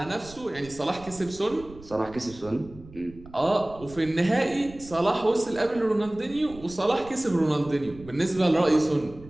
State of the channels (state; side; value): noise; right; rumble, 19 dB below the sound